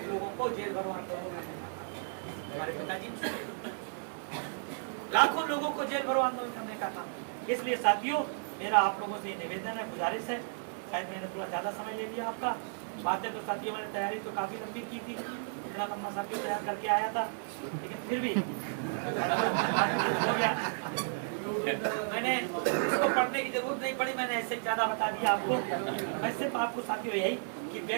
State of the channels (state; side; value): silent; left; digital silence